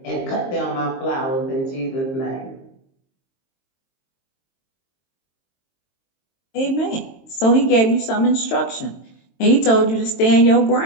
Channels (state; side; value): late; right; 22 ms